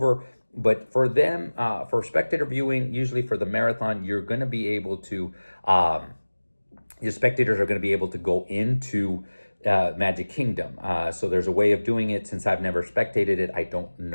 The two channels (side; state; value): both; inverted; correlation -1.00